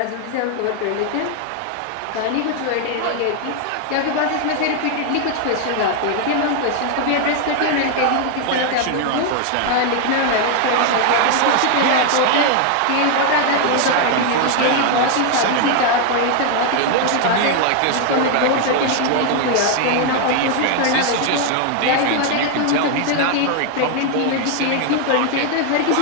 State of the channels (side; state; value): both; different; correlation 0.00